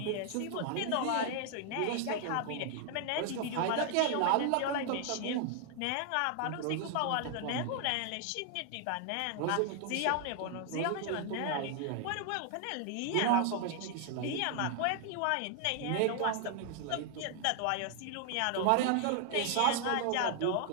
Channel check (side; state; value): both; different; correlation 0.00